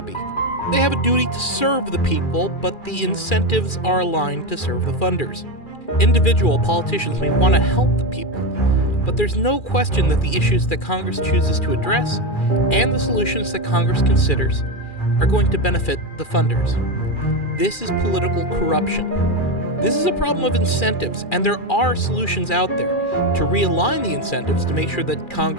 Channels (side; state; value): right; late; 2.4 ms